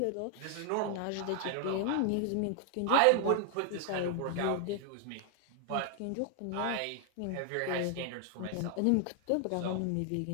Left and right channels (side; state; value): both; different; correlation 0.00